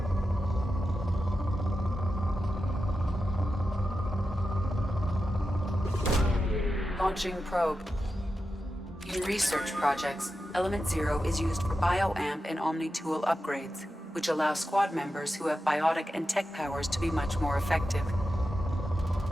Launching probe. In research projects, Element Zero is used for bioamp and Omni-tool upgrades, which allow squad members who have biotic and tech powers to be much more effective.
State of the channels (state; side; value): normal; both; correlation 0.90